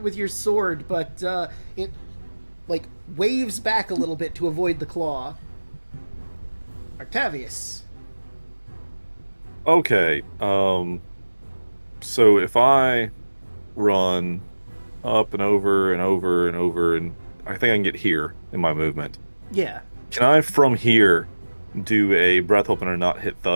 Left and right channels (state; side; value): inverted; both; correlation -1.00